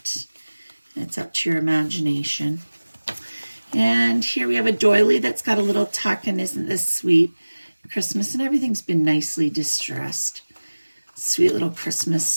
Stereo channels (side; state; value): both; inverted; correlation -1.00